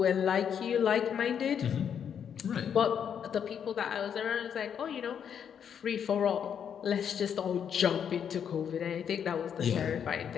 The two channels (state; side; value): quieter; right; 8.1 dB